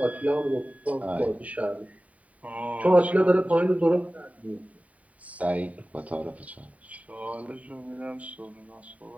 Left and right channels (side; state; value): left; late; 0.069 ms